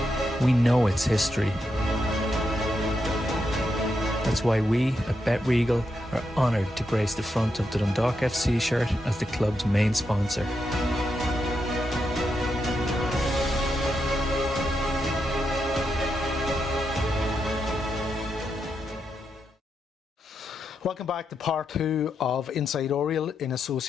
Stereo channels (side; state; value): both; normal; correlation 0.84